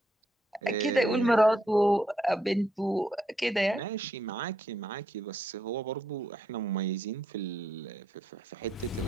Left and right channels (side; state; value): both; normal; correlation 0.76